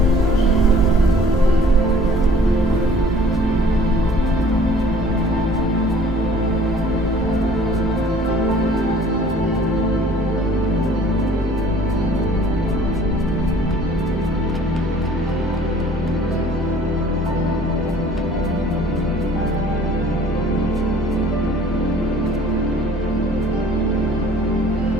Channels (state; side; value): normal; both; correlation 0.53